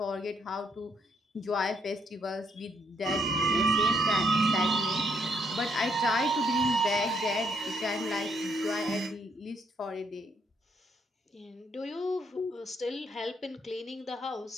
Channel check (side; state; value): both; normal; correlation 0.72